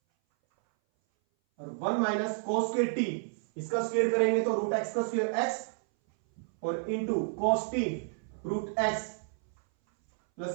और 1 माइनस कॉस स्क्वायर टी, इसका स्क्वायर करेंगे तो रूट एक्स का स्क्वायर एक्स और into cos t root x plus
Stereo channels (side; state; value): left; silent; 57 dB below the other